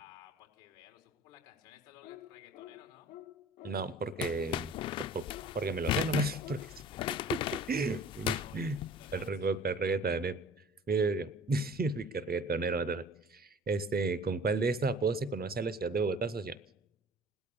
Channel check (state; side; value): normal; both; correlation 0.46